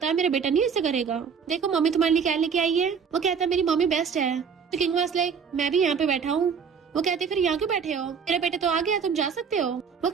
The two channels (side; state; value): left; quieter; 6.5 dB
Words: है मेरा बेटा नहीं ऐसे करेगा, देखो मम्मी तुम्हारे लिए क्या लेके आई है। वो कहता है मेरी मम्मी बेस्ट है। तो किंग वाज लाइक मैं भी यहाँ पे बैठा हूँ। वो कहते फिर यहाँ क्यों बैठे हो, मेरा बेटा तो आ गया तुम जा सकते हो। वो